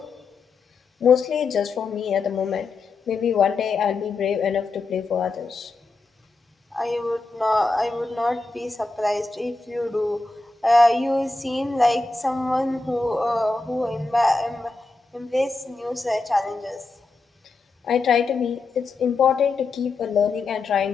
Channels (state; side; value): quieter; right; 3.6 dB